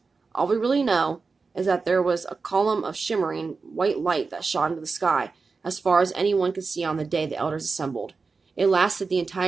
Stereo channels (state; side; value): quieter; left; 4.5 dB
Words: All we really know is that there was a column of shimmering white light that shot into the sky, as far as anyone could see on the day the elders assembled. It lasted the